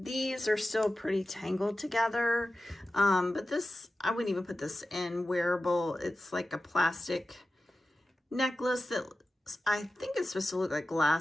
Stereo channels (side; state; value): both; normal; correlation 0.93